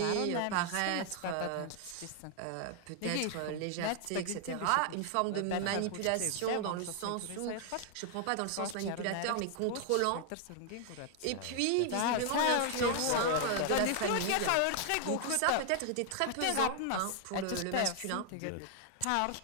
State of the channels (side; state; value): both; different; correlation 0.00